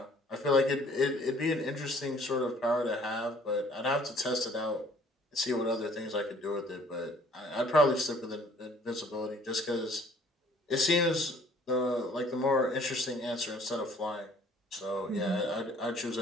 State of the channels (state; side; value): normal; both; correlation 0.57